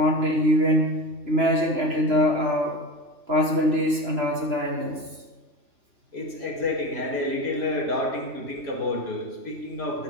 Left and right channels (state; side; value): late; left; 2.9 ms